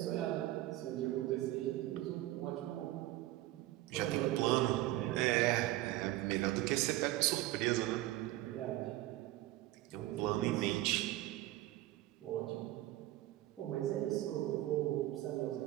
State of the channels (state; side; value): quieter; left; 16.3 dB